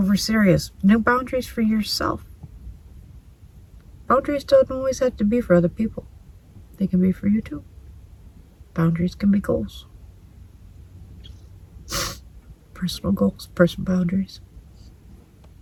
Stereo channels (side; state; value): both; identical; correlation 1.00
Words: serious. New boundaries for yourself. Boundaries don't always have to be for other people. They can be for you too. Boundaries can be goals. Personal goals, personal boundaries.